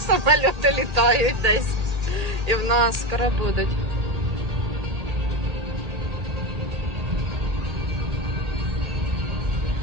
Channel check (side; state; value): left; late; 1.8 ms